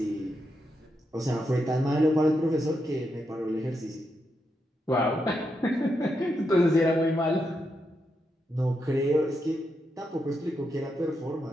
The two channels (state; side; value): normal; both; correlation 0.83